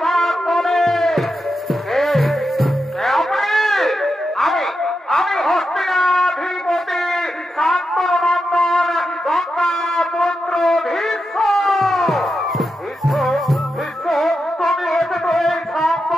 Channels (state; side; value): normal; both; correlation 0.87